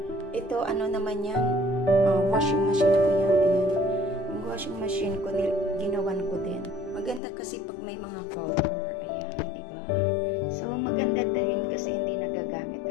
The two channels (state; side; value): drops out; right; at 7.2 s